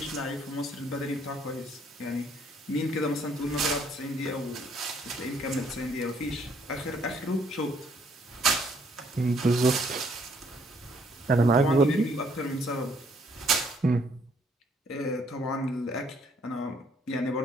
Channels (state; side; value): normal; both; correlation 0.66